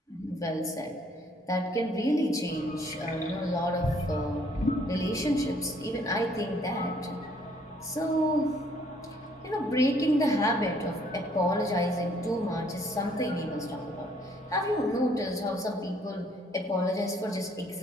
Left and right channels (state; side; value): normal; both; correlation 0.64